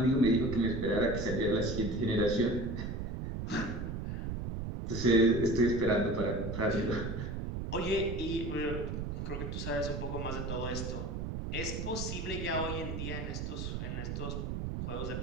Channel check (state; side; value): noise; right; rumble, 4 dB below the sound